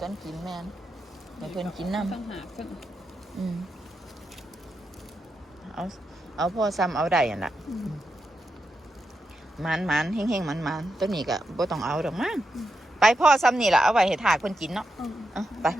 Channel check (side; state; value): both; normal; correlation 0.86